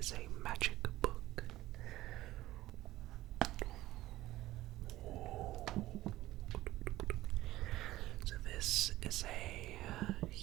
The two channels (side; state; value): left; quieter; 16.1 dB